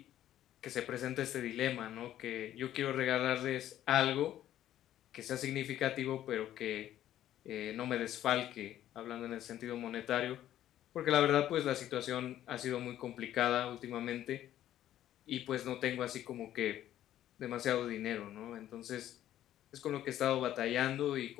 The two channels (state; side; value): quieter; right; 12.3 dB